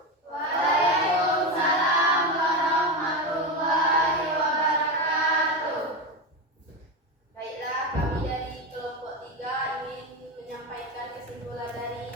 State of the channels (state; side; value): normal; both; correlation 0.16